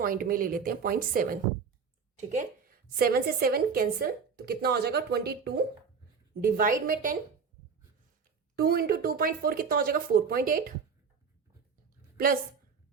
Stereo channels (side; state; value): left; quieter; 5.8 dB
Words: में ले लेते हैं 0.7, ठीक है। 7 से 7 कैंसिल, तो कितना हो जाएगा 22 डिवाइड में 10, 2 इंटू 2.4 कितना हो जाएगा 4.8 प्लस